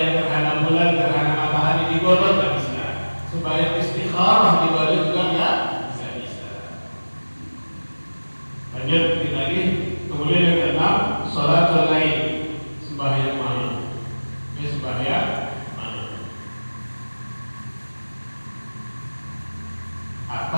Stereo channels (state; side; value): inverted; both; correlation -1.00